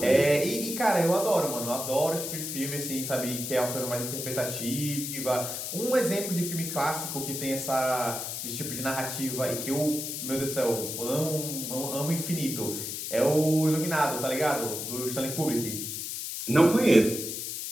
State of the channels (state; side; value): noise; left; hiss, 5 dB below the sound